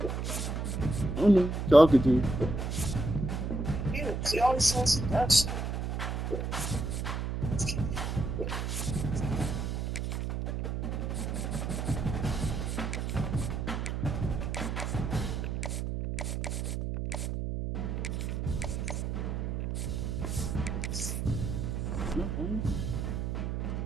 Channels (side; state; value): right; noise; hum, 2 dB below the sound